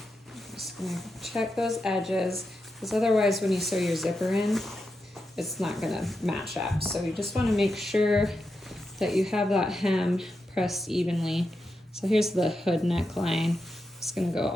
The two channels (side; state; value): both; normal; correlation 0.87